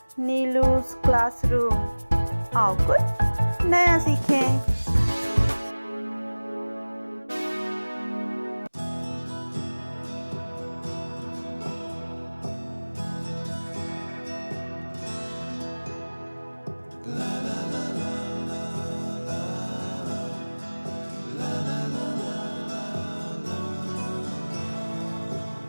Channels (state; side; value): inverted; both; correlation -1.00